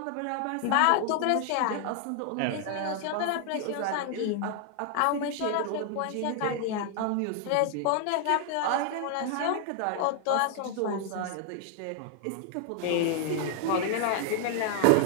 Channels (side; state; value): both; different; correlation 0.00